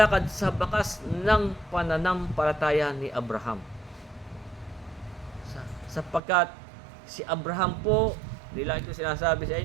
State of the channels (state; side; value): drops out; left; at 6.2 s